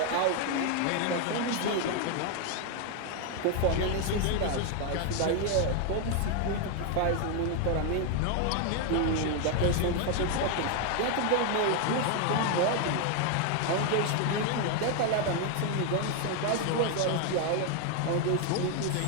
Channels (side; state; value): both; different; correlation 0.01